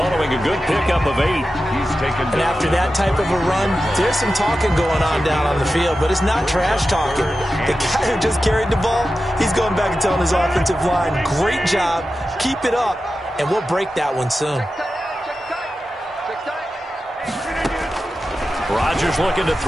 a good pickup of 8. And after that type of a run, there's some talking going on down on the field, but it's not trash talking. The guy who just carried the ball, he's going back and telling his offensive line, great job, keep it up, and we'll break that one soon. Rodgers looking to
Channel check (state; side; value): normal; both; correlation 0.92